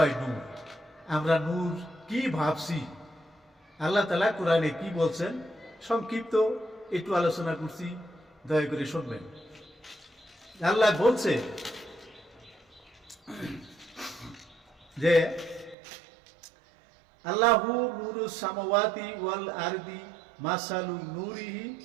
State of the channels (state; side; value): drops out; left; at 15.8 s